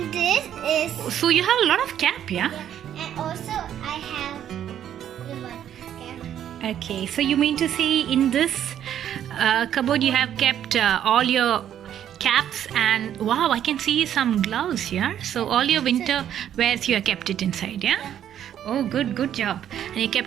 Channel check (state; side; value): quieter; left; 10.3 dB